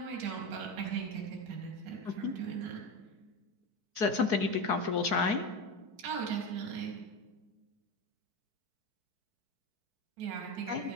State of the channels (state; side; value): late; left; 4.6 ms